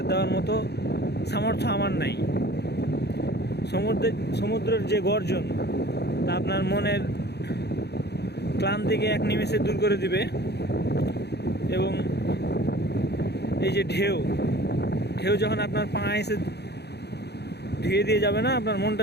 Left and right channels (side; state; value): right; late; 0.48 ms